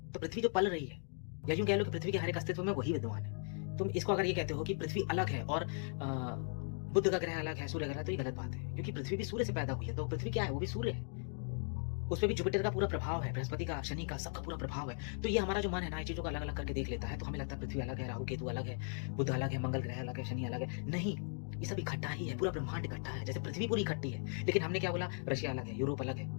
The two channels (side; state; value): right; silent; 53 dB below the other